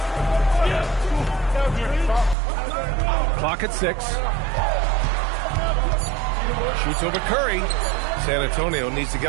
Clock at 6. Shoots over Curry. San Antonio needs to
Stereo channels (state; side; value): drops out; left; at 2.4 s